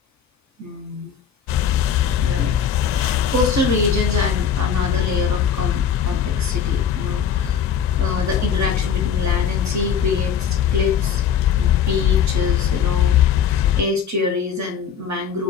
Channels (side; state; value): right; quieter; 7.7 dB